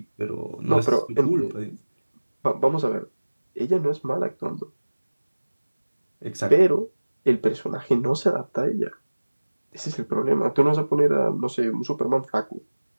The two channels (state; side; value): inverted; both; correlation -1.00